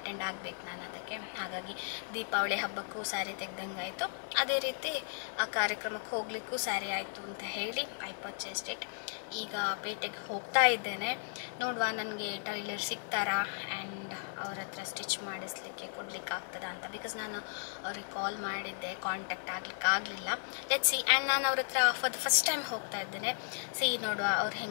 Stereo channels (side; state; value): right; silent; digital silence